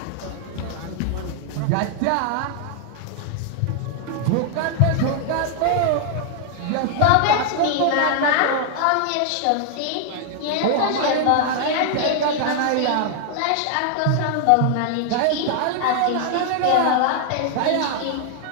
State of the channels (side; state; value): both; different; correlation 0.00